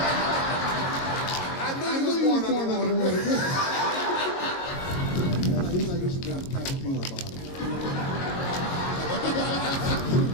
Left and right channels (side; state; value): right; late; 22 ms